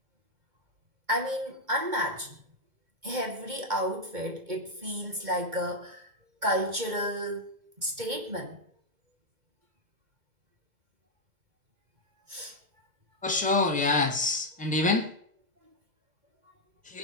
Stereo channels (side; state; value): left; late; 2.0 ms